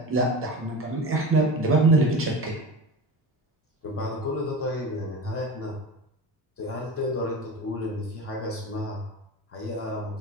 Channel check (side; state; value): both; normal; correlation 0.31